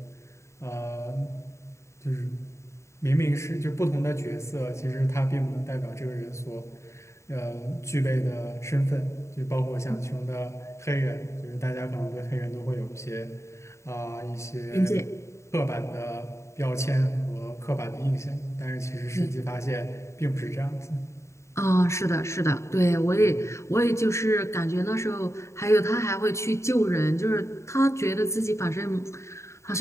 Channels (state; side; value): late; right; 0.14 ms